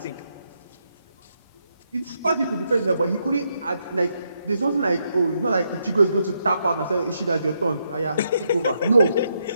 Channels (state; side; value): inverted; both; correlation -0.79